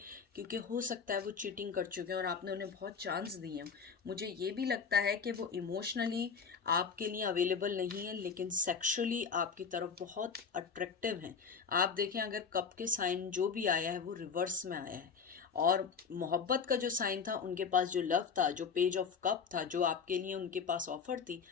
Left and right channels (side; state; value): right; quieter; 6.0 dB